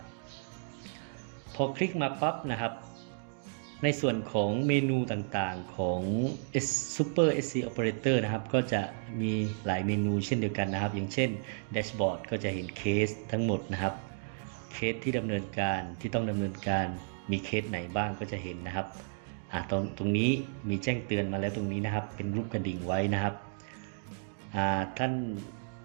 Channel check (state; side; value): silent; left; digital silence